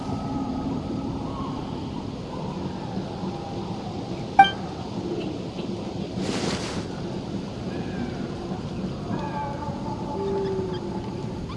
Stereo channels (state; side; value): identical; both; correlation 1.00